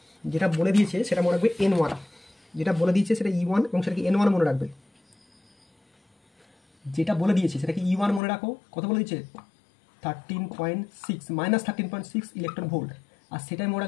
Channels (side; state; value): right; drops out; at 8.2 s